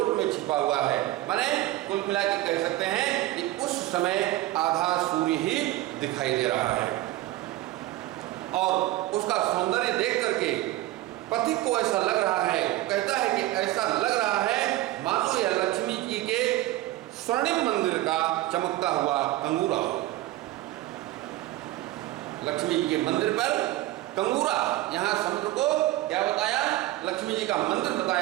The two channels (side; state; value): left; quieter; 16.4 dB